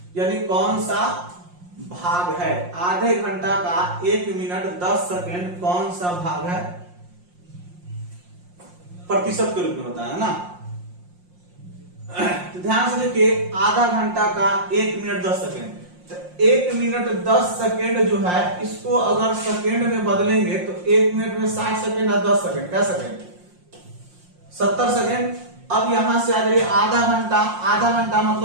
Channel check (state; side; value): late; left; 5.6 ms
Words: यानी कौन सा भाग है, आधे घंटा का 1 मिनट 10 सेकेंड कौन सा भाग है, प्रतिशत के रूप में होता है ना। तो ध्यान से देखिए, आधा घंटा का 1 मिनट 10 सेकेंड, तो 1 मिनट 10 सेकेंड जो है, इसको अगर सेकेंड में बदलेंगे तो 1 मिनट में 60 सेकेंड और 10 सेकेंड, क्या सेकेंड 70 सेकेंड। अब यहां से आ जाइए आधा घंटा, आधा घंटा मतलब